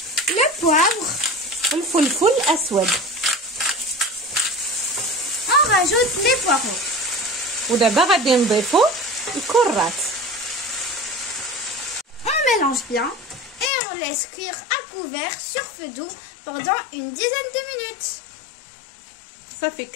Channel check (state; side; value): drops out; right; at 13.7 s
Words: Le poivre. الفلفل الاسود. On rajoute les poireaux. ودابا غادي نضيفو الكرات. On mélange bien et on laisse cuire à couvert sur feu doux pendant une dizaine de minutes. صافي